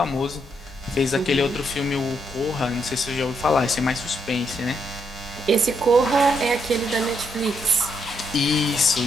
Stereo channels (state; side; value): normal; both; correlation 0.77